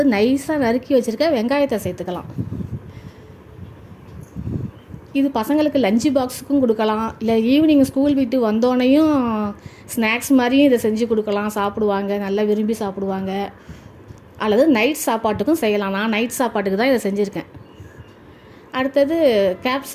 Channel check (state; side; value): identical; both; correlation 1.00